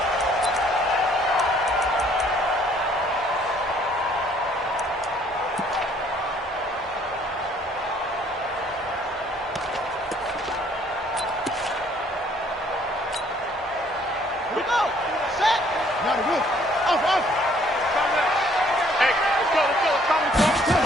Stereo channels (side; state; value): both; normal; correlation 0.61